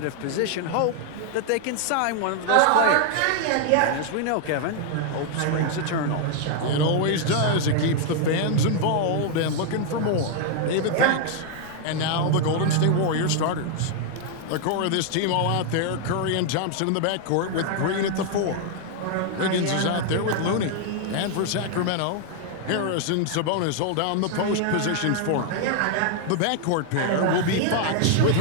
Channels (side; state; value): both; different; correlation 0.00